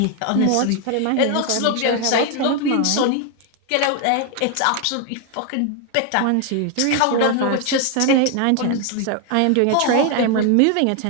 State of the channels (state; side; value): different; both; correlation 0.01